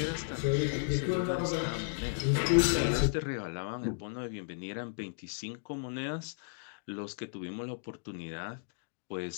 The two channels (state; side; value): silent; right; digital silence